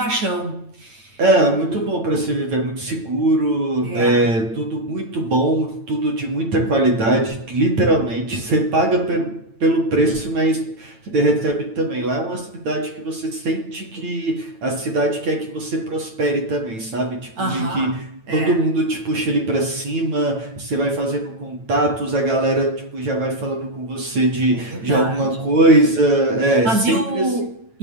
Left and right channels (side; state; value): left; late; 9.0 ms